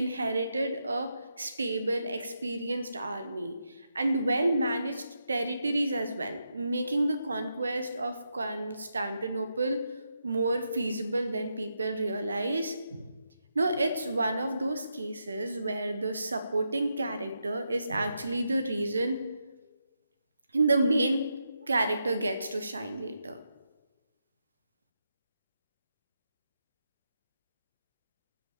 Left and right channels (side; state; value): both; inverted; correlation -0.84